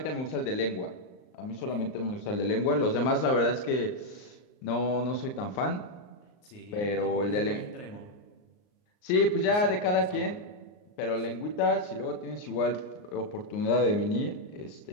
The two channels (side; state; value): right; late; 39 ms